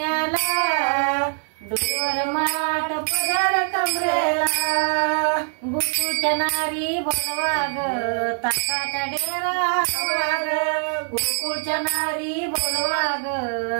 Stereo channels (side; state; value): left; silent; 56 dB below the other